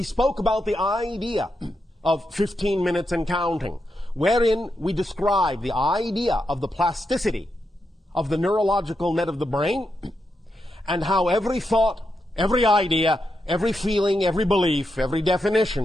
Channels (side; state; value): both; normal; correlation 0.85